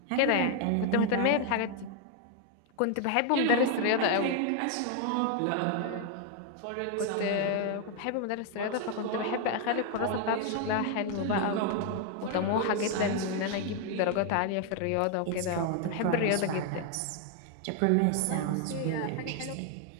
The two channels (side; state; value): both; different; correlation 0.00